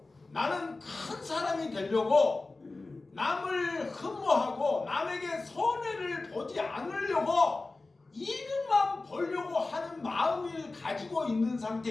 나는 큰 사람이 되려고 남을 흠모하고 남에게 손해를 보지 않으려고 이익만 보려고 하는 마음을 가지고 있는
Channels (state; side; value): quieter; right; 3.4 dB